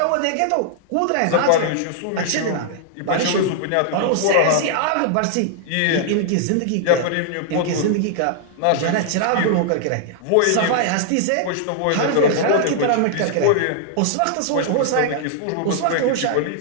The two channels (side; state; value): both; different; correlation -0.01